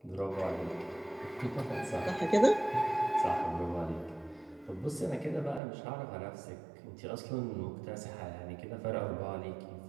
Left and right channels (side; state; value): left; drops out; at 5.6 s